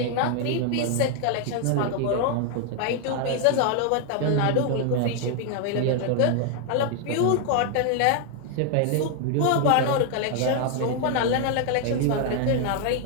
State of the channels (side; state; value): both; different; correlation 0.00